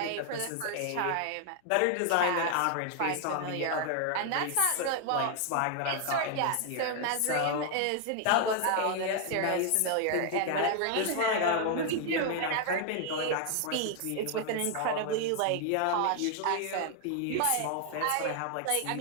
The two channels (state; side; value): different; both; correlation 0.00